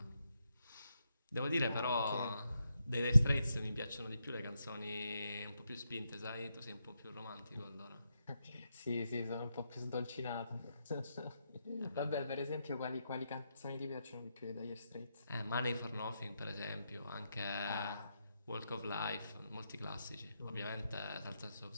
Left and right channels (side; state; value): both; inverted; correlation -0.83